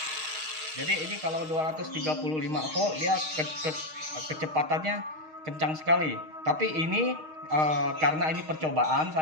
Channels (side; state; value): left; late; 6.4 ms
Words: Jadi ini kalau 235 volt dia kecepatannya kencang sekali. Tapi ini karena ini percobaan,